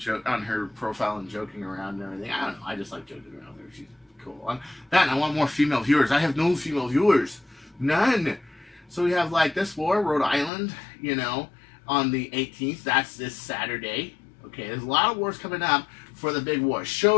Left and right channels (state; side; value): drops out; right; at 10.5 s